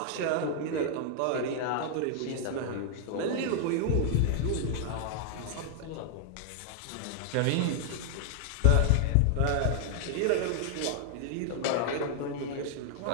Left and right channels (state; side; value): different; both; correlation -0.01